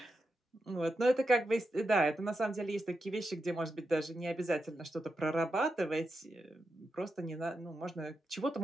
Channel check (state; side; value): normal; both; correlation 0.87